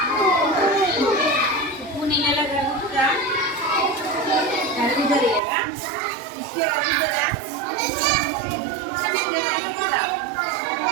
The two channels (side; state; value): left; drops out; at 5.4 s